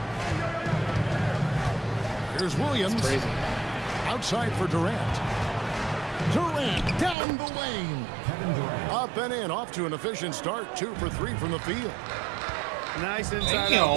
Here's Williams. Outside for Durant. Durant down the lane. Up and in, off to an efficient start. 2 for 3 from the field. Nice inside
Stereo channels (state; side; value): drops out; left; at 7.2 s